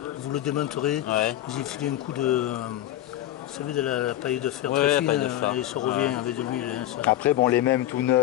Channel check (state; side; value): quieter; right; 13.6 dB